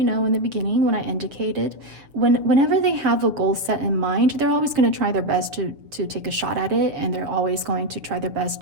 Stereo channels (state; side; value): late; left; 7.0 ms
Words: know, in the beginning when I indicated, whenever they have a goal set in mind, they're always going to try their best to take a shot at it, and they're always going to try their best